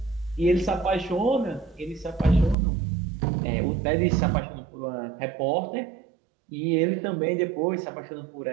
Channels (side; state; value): left; drops out; at 2.6 s